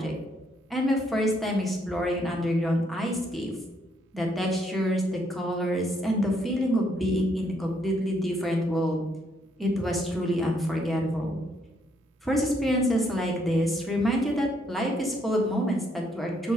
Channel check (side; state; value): both; normal; correlation 0.72